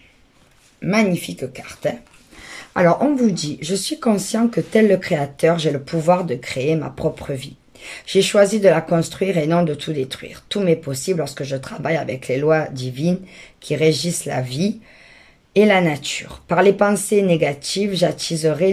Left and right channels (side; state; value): both; identical; correlation 1.00